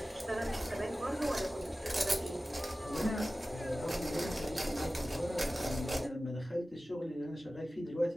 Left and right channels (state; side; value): normal; both; correlation 0.96